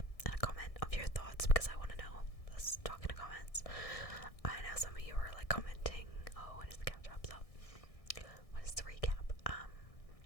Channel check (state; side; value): late; right; 1.6 ms